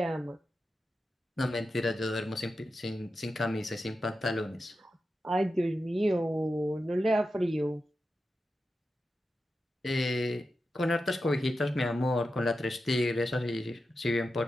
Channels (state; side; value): normal; both; correlation 0.90